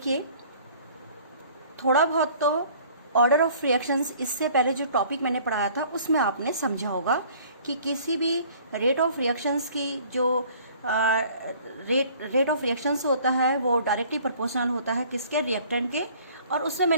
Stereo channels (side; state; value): both; inverted; correlation -0.53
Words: थोड़ा बहुत तो ऑर्डर ऑफ रिएक्शंस इससे पहले जो टॉपिक मैंने पढ़ाया था उसमें आपने समझा होगा कि किसी भी रेट ऑफ रिएक्शंस की जो रेट ऑफ रिएक्शंस होता है वो डायरेक्टली प्रोपोर्शनल होता है किसके, रिएक्टेंट के। और उसमें